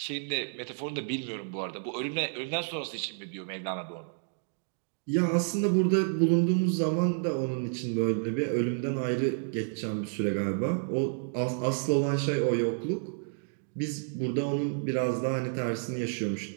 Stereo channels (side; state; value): left; silent; digital silence